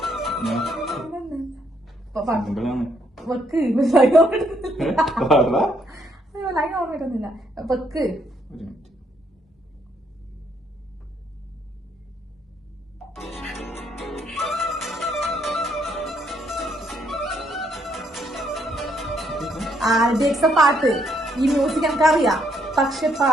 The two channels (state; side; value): normal; both; correlation 0.72